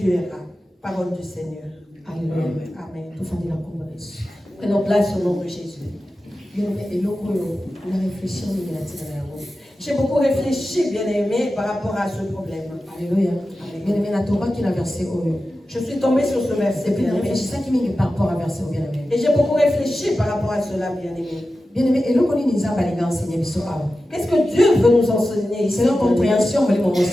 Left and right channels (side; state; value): both; normal; correlation 0.93